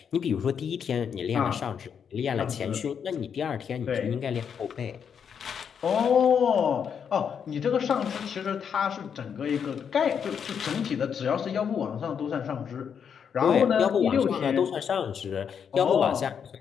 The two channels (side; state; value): right; quieter; 7.4 dB